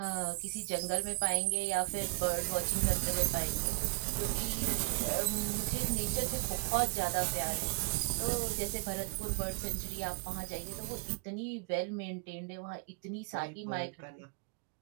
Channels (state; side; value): quieter; left; 34.6 dB